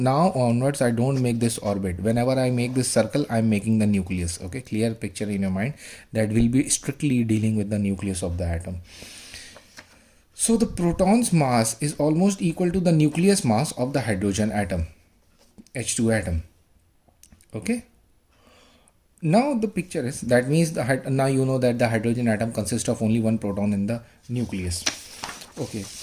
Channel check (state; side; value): identical; both; correlation 1.00